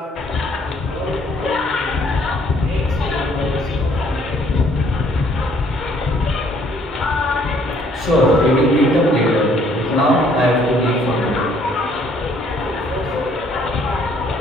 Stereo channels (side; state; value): both; normal; correlation 0.63